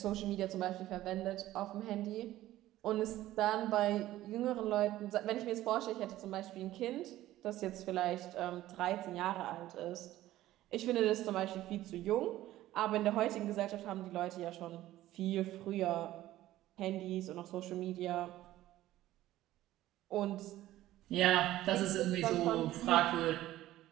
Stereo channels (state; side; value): quieter; left; 14.9 dB